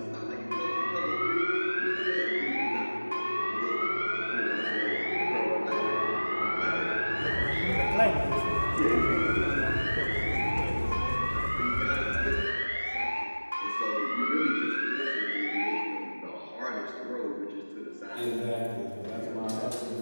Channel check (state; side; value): inverted; both; correlation -1.00